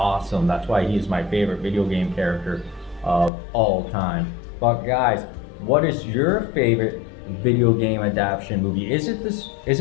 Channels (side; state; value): right; drops out; at 3.3 s